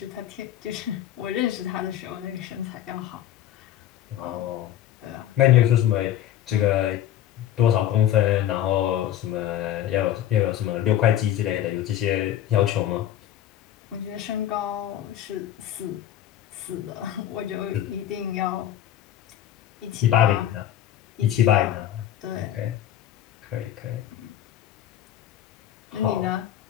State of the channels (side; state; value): right; quieter; 11.8 dB